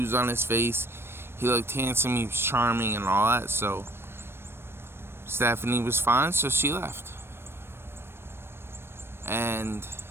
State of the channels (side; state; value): left; late; 0.12 ms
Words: on his face. He looked handsome, he was charming and all that, so Stephanie was fine, so she left. And